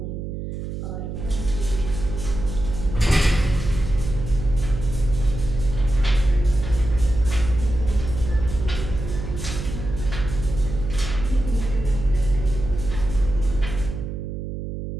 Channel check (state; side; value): noise; right; hum, 6 dB below the sound